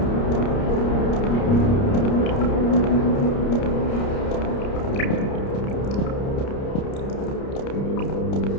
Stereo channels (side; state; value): right; late; 30 ms